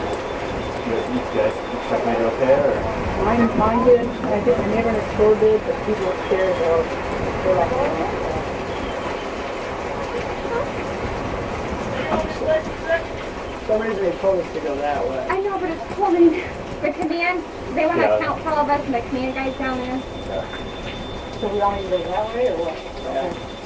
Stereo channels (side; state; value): both; identical; correlation 1.00